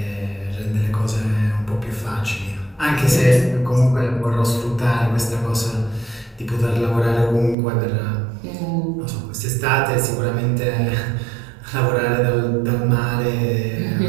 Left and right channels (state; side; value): drops out; left; at 7.6 s